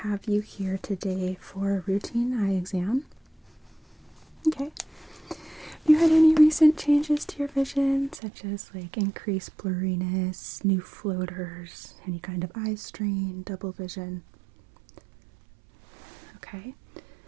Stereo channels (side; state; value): left; drops out; at 8.2 s